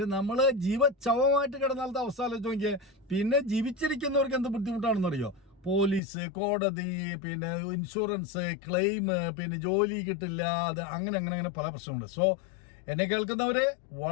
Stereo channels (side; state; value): right; drops out; at 6.0 s